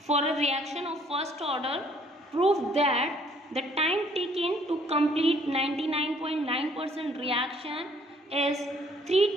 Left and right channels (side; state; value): both; normal; correlation 0.61